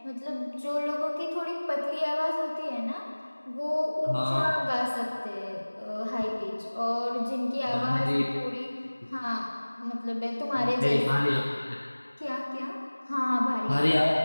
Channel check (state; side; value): inverted; both; correlation -1.00